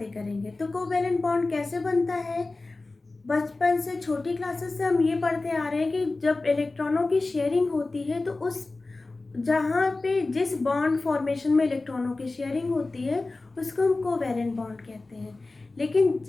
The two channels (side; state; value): right; quieter; 3.3 dB